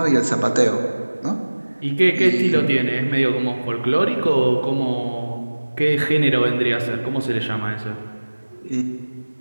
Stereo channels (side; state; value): both; inverted; correlation -1.00